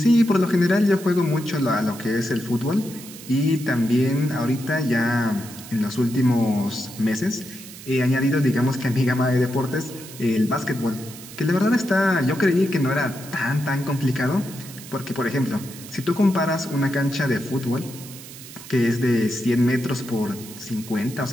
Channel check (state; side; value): noise; right; hiss, 15 dB below the sound